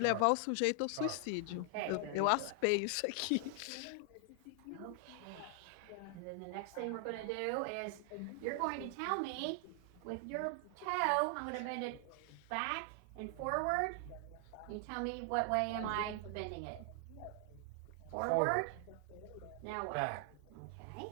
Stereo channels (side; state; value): both; different; correlation 0.00